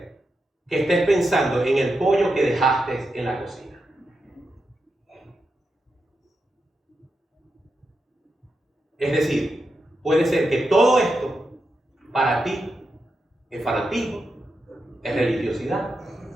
que estés pensando en el pollo que dejaste en la cocina. Es decir, puede ser que todo esto para ti es fanatismo, es religiosidad,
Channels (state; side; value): normal; both; correlation 0.87